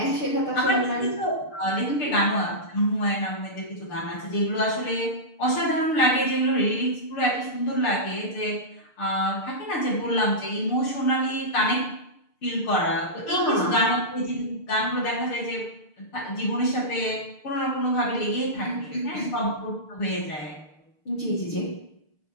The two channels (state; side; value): late; right; 6.6 ms